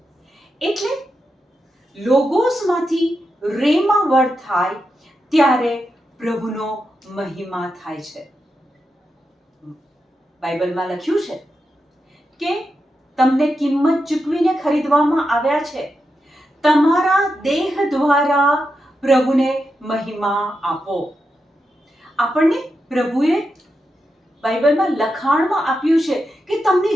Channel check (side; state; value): both; normal; correlation 0.87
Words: એટલે લોગોસમાંથી રેમા વર્ડ થાય ત્યારે પ્રભુનો મહિમા થાય છે. બાઇબલમાં લખ્યું છે કે તમને કિંમત ચૂકવીને ખરીદવામાં આવ્યા છે, તમારા દેહ દ્વારા પ્રભુને મહિમા આપો. આપણને પ્રભુએ બાઇબલમાં લખાણમાં આપ્યું છે કે તમને